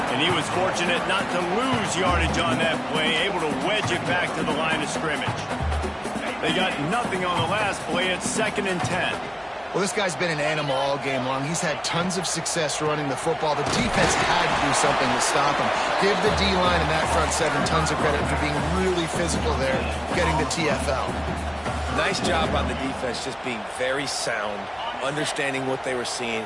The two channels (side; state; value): both; identical; correlation 1.00